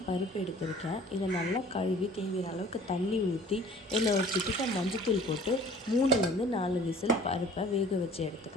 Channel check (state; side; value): normal; both; correlation 0.48